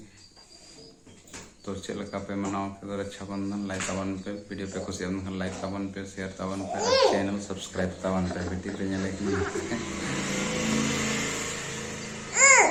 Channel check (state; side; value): identical; both; correlation 1.00